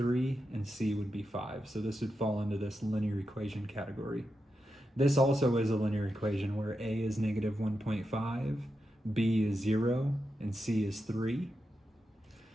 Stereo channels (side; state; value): both; normal; correlation 0.87